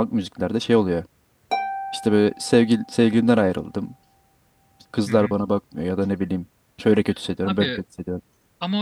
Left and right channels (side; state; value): both; identical; correlation 1.00